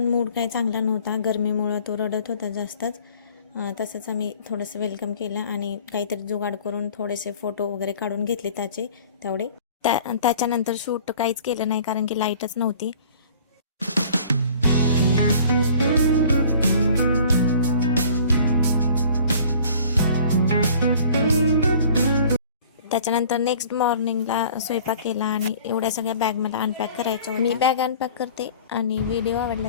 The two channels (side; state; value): both; inverted; correlation -0.49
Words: मूड काही चांगला नव्हता, गरमीमुळं तो रडत होता जास्तच. तसंच आम्ही थोडंसं वेलकम केलं आणि काहीतरी जुगाड करून थोडेसे फोटो वगैरे काढून घेतले तेवढे. त्याच्यानंतर शूट काहीच केलं नाही कारण की लाईटच नव्हती. त्याच्यानंतर नेक्स्ट मॉर्निंगला स्वयंपाक केला आणि एवढ्या सगळ्या बॅग मला अनपॅक करायच्या होत्या. मी बॅग अनपॅक करते आणि व्हिडिओ आवडला